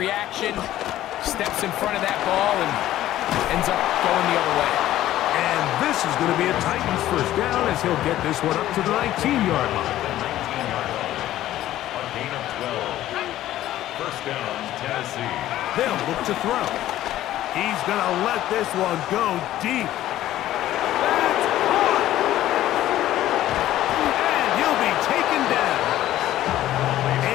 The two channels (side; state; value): right; quieter; 13.8 dB